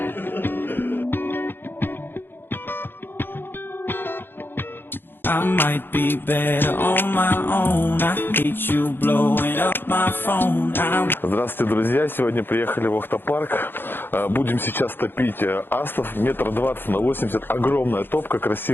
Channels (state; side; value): late; right; 0.10 ms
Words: might be better on my own. I hate you blowing up my phone. Здравствуйте, друзья! Сегодня приехали в Охта-парк. Будем сейчас топить астов 1,20 на 80 м. Огромная топка,